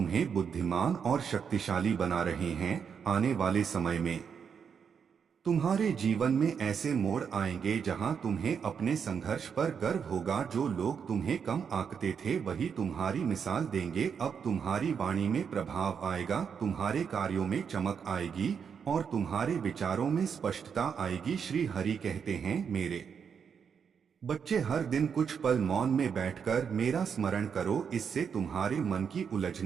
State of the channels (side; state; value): left; quieter; 6.9 dB